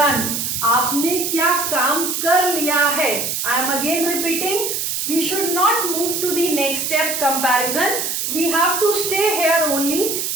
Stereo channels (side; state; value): right; noise; hiss, 1 dB below the sound